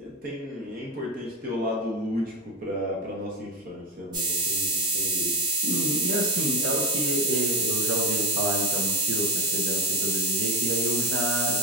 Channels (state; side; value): normal; both; correlation 0.14